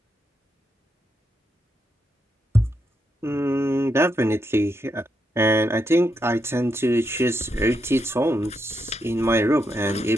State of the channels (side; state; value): both; normal; correlation 0.82